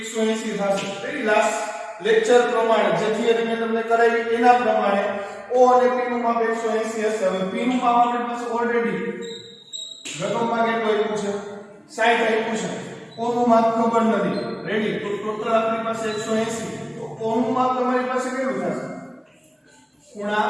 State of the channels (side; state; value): both; identical; correlation 1.00